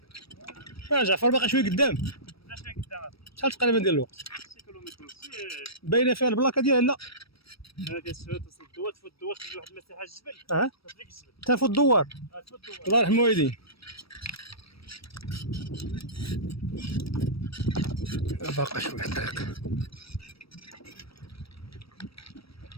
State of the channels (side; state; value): right; late; 0.76 ms